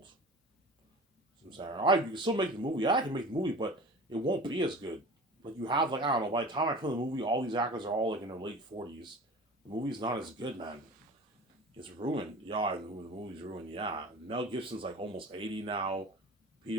So I'm saying, all right, you can still make the movie. Yeah, I can make the movie, but it won't be as good. Like you have, like I don't know. By the time I film the movie, all these actors are all like in their late 40s. The movie's not as good, man. It's ruined. Yeah, the movie's ruined. Yeah, Mel Gibson's like almost 80 now.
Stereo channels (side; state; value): both; normal; correlation 0.38